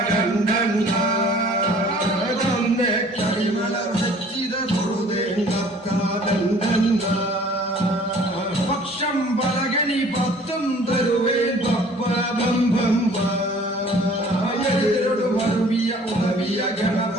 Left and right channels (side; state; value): both; normal; correlation 0.52